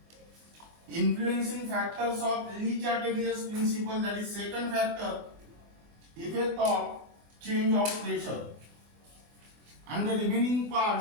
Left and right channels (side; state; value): left; late; 24 ms